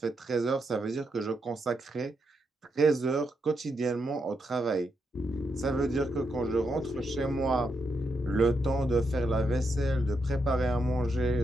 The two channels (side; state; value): both; normal; correlation 0.82